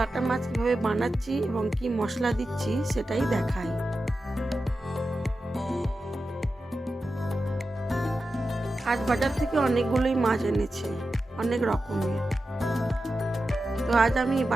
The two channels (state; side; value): normal; both; correlation 0.91